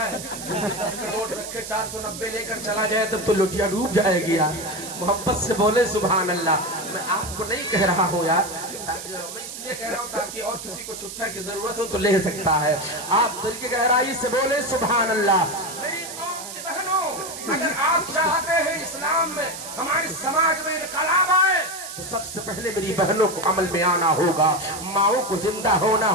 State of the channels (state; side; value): noise; right; hiss, 10 dB below the sound